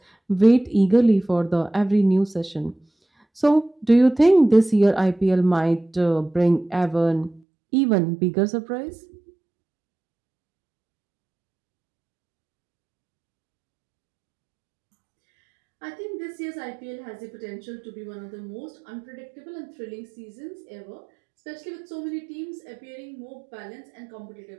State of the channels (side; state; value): left; drops out; at 7.4 s